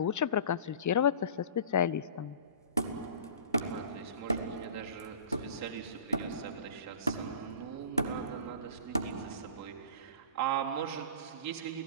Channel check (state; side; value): inverted; both; correlation -0.40